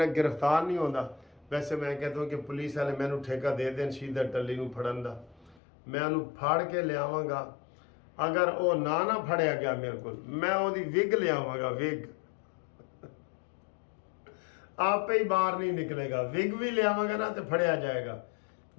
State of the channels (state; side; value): drops out; right; at 5.6 s